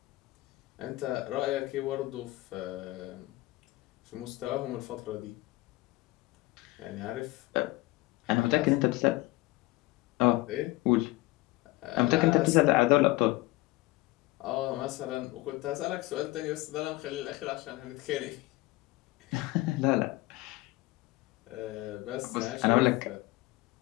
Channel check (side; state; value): right; quieter; 19.9 dB